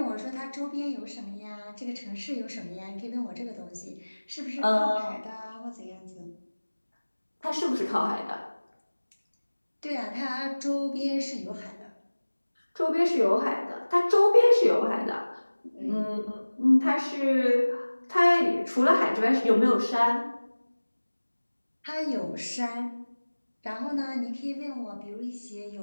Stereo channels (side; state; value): both; inverted; correlation -1.00